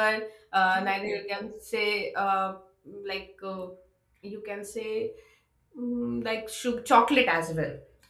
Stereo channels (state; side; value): identical; both; correlation 1.00